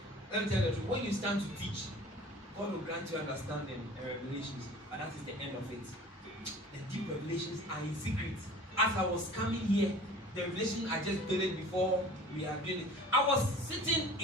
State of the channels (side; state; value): both; normal; correlation 0.44